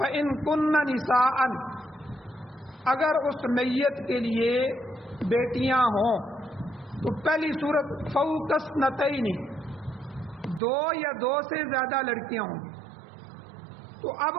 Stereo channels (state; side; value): drops out; left; at 10.6 s